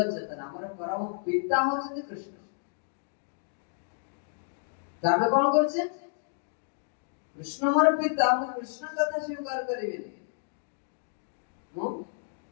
चेतना हमर परम पिता होछि कृष्ण तामे कोन करछे कृष्ण हमर पिता हम कृष्ण कथा स्वीकार करिबे मो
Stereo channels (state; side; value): silent; right; digital silence